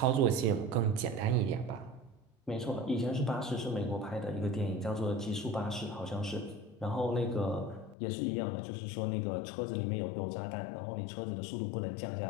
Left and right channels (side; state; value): right; drops out; at 8.0 s